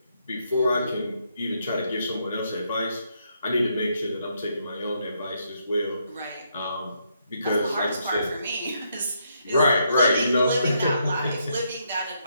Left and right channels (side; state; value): both; inverted; correlation -0.76